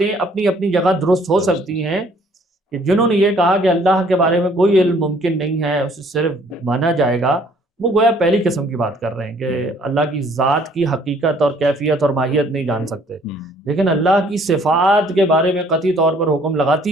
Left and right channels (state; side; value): normal; both; correlation 0.60